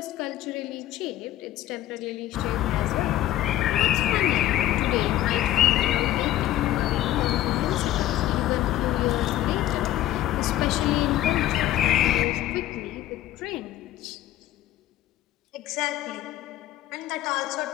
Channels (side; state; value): right; quieter; 13.5 dB